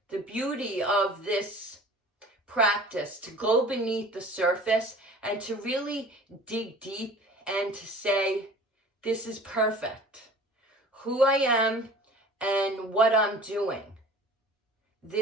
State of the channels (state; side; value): normal; both; correlation 0.44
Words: The beauty of this practice, to go beneath the surface and to really dig deep and to say, this is perfect. Who I am and what I'm doing.